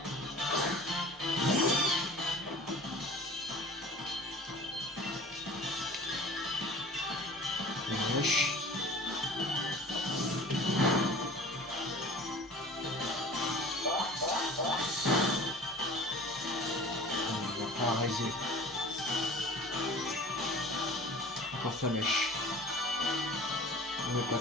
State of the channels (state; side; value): normal; both; correlation 0.42